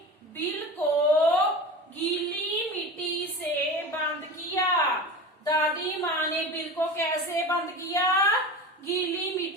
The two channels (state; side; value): normal; both; correlation 0.31